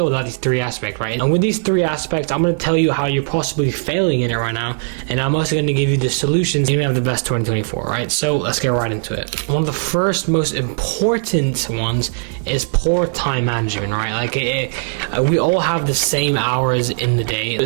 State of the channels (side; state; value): left; silent; digital silence